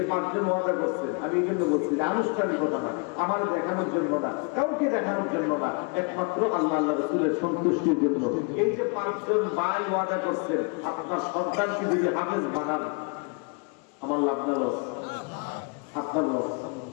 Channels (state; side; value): quieter; right; 34.6 dB